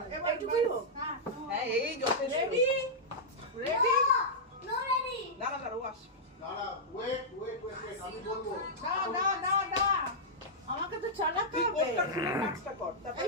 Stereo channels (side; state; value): both; normal; correlation -0.09